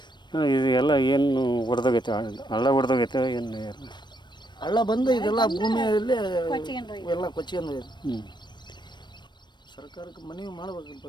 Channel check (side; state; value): right; late; 0.22 ms